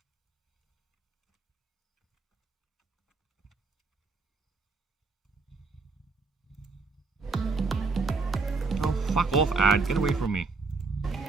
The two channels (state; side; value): quieter; left; 4.0 dB